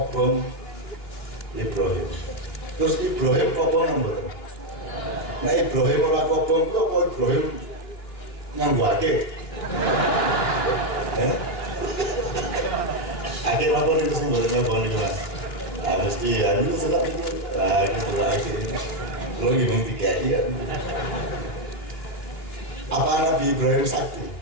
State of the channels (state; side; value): late; right; 2.9 ms